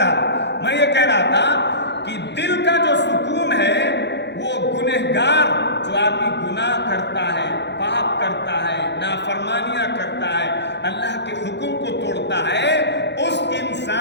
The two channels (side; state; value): right; late; 0.50 ms